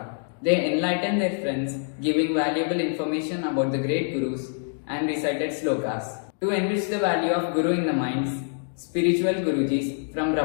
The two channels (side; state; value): right; silent; 61 dB below the other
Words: They enlightened their friends, giving valuable information about the great gurus and recited slokas. To enrich the value of Guru in the minds, spiritual Gurujis from